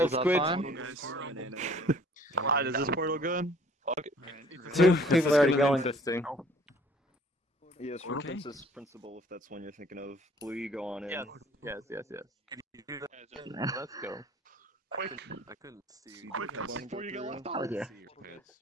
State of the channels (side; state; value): both; normal; correlation 0.55